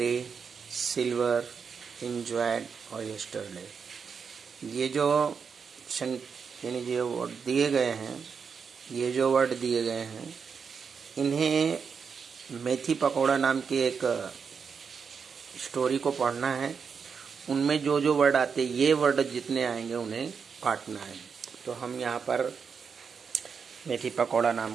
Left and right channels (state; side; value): quieter; left; 6.1 dB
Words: silver, enjoyed और यस्टरडे। ये जो यानी जो वर्ड दिए गए हैं, इन्हें मेथी पकौड़ा नाम की एक स्टोरी को पढ़ना है। उनमें जो जो वर्ड आते, ये वर्ड जितने आएंगे उन्हें काटना है। तो हम यहाँ पर मेथी पकौड़ा नाम